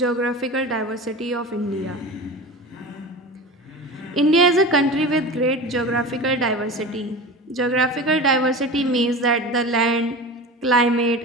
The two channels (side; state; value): both; normal; correlation 0.31